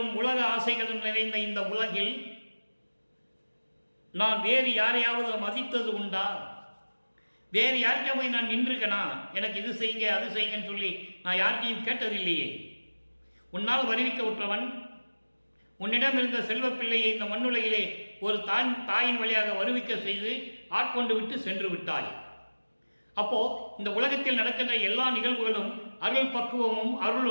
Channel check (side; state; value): both; inverted; correlation -1.00